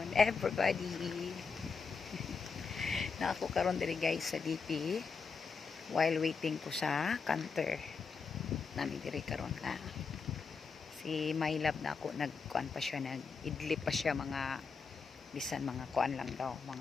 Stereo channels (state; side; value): quieter; right; 5.2 dB